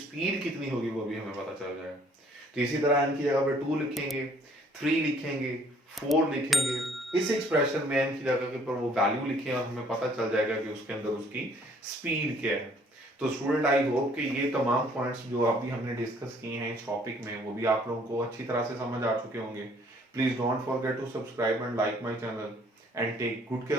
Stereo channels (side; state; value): both; normal; correlation 0.60